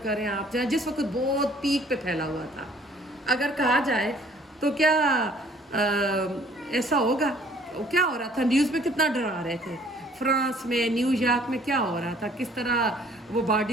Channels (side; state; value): both; normal; correlation 0.57